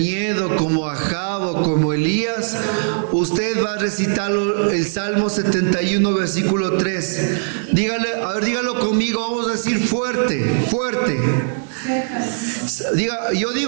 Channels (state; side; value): silent; left; 59 dB below the other